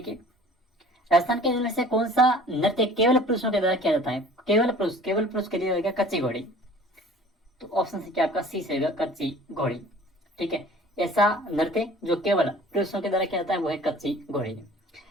राजस्थान के जिले से कौन सा नृत्य केवल पुरुषों के द्वारा किया जाता है? केवल पुरुष के लिए होगा कच्ची घोड़ी, तो ऑप्शन से क्या आपका सी से होगा कच्ची घोड़ी। ठीक है, ऐसा नृत्य जो केवल पुरुषों के द्वारा किया जाता है वो है कच्ची घोड़ी।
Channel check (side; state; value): both; normal; correlation 0.48